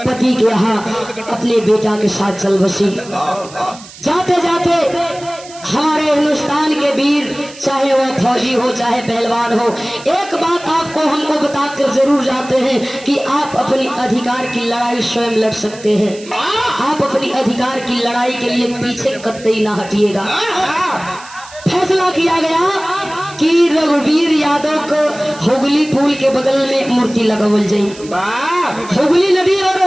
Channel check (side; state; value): right; noise; hiss, 19 dB below the sound